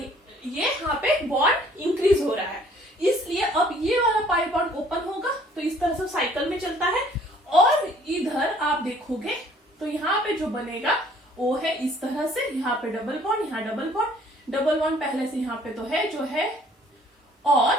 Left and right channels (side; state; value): both; normal; correlation 0.58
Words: यहाँ पे बॉन्ड इंक्रीज हो रहा है, इसलिए अब ये वाला पाई बॉन्ड ओपन होगा। तो इस तरह से साइकिल में चलता है। और इधर आप देखोगे तो यहाँ पे जो बनेगा वो है इस तरह से, यहाँ पे डबल बॉन्ड, यहाँ डबल बॉन्ड, डबल बॉन्ड पहले से यहाँ पे तो है जो है,